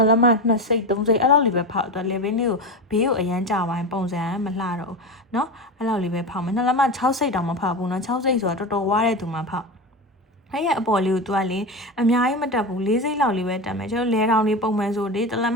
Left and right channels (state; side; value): normal; both; correlation 0.21